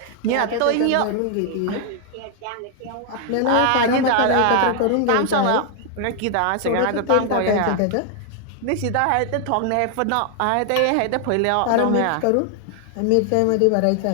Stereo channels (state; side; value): different; both; correlation 0.00